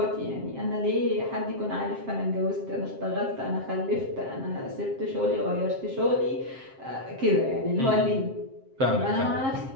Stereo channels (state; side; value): late; left; 7.5 ms